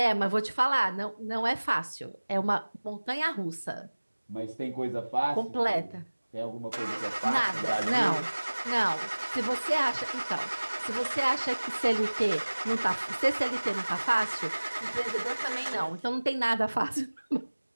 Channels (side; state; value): both; inverted; correlation -1.00